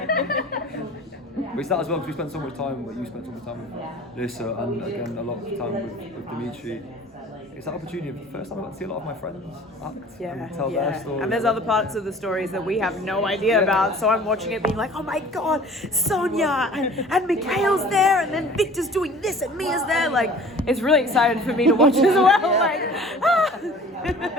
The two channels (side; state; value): both; normal; correlation 0.46